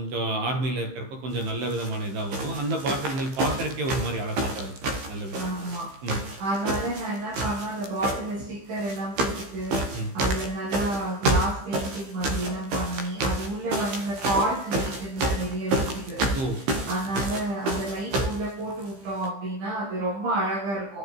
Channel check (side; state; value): left; late; 15 ms